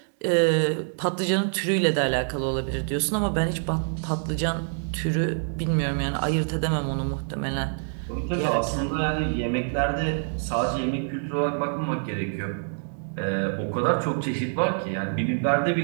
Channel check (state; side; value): silent; left; digital silence